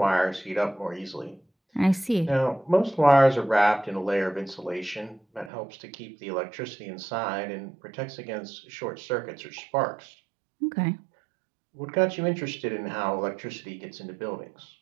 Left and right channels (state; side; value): drops out; left; at 5.5 s